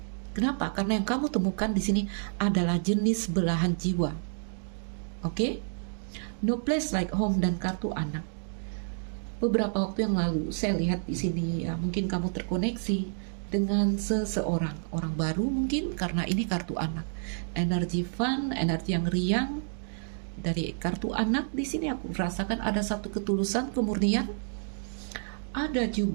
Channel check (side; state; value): left; silent; digital silence